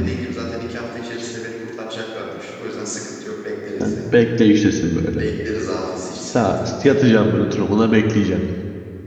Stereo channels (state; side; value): identical; both; correlation 1.00